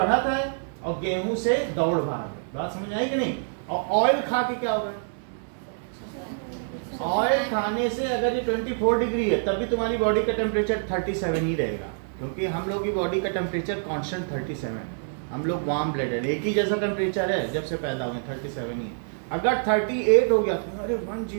है और गेहूं से दौड़ भाग है। बात समझ आई कि नहीं? और ऑयल खा के क्या होगा? ऑयल खाने से अगर ये 24 डिग्री है, तब भी तुम्हारी बॉडी का टेम्परेचर 37 ही रहेगा, क्योंकि हम लोग की बॉडी का टेम्परेचर कांस्टेंट 37 है। हम लोग वार्म ब्लडेड, एक ही जैसा टेम्परेचर है जब से पैदा हुए, 37 ही है। अगर 38 हो गया तो अरे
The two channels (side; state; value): left; silent; digital silence